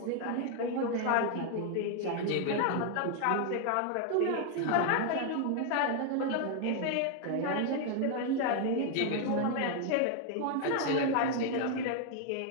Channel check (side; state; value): both; different; correlation 0.00